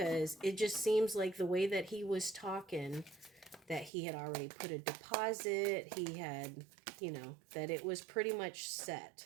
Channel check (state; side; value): drops out; left; at 3.9 s